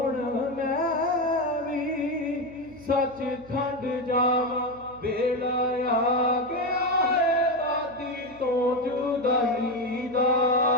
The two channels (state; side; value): noise; right; hum, 24 dB below the sound